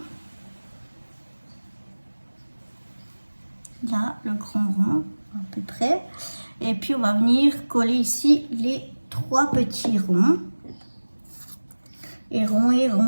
Là, le grand rond, à peu près. Et puis, on va venir coller ici les 3 petits ronds. Et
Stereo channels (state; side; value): inverted; both; correlation -1.00